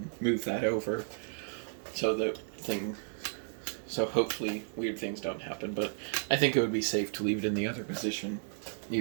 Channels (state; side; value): silent; left; 56 dB below the other